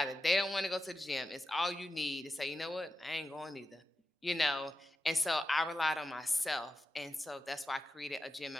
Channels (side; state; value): both; normal; correlation 0.90